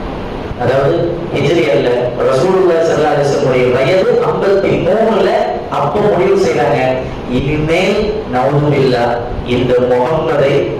அதாவது ஹிஜ்ரி அல்ல, ரசூலுல்லாஹி ஸல்லல்லாஹு அலைஹி வஸல்லம் வயது 53, அப்போ முடிவு செய்றாங்க, இனிமேல் நவுதுபில்லாஹ் இந்த முகம்மதை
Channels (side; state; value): both; identical; correlation 1.00